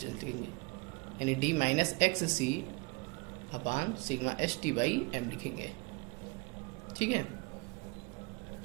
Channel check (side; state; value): left; quieter; 27.7 dB